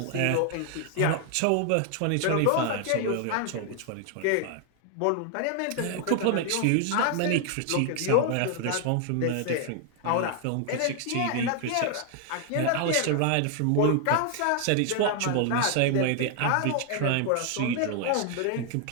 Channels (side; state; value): both; different; correlation 0.00